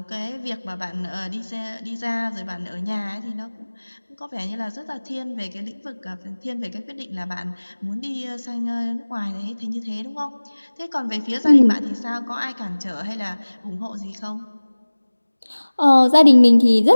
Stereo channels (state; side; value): inverted; both; correlation -1.00